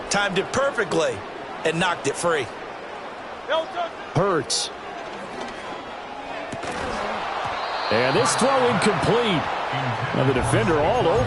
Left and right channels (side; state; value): both; identical; correlation 1.00